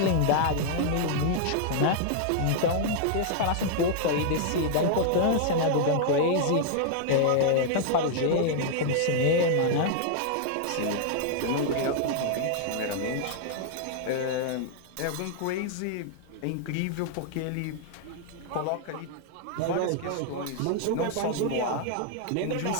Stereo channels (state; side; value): different; both; correlation 0.00